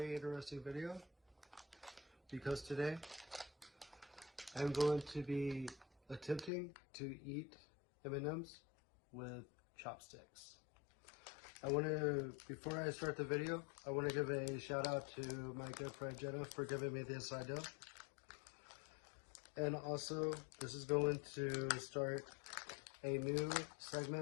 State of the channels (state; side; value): drops out; right; at 6.5 s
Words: interesting video because today I'm going to be attempting to eat M&Ms with chopsticks. Before I start the video, I want to give a shout out to my good friend Jenna for giving me this idea. And also, this is going to start a new